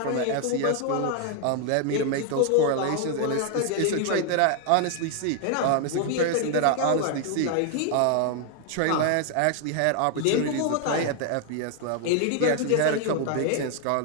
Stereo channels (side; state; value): both; different; correlation 0.00